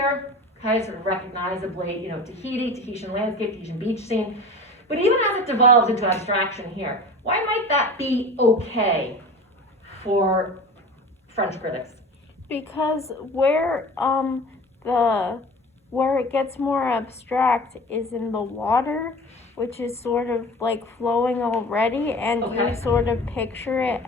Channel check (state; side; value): normal; both; correlation 0.37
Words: okay, sort of recognizably, Tahitian landscape, Tahitian beach scene. But even as it devolves into abstraction here, why might that be okay for French critics? Because where it gets more abstract is in the water, which is sort of like flowing already, and Okay. you sort of picture it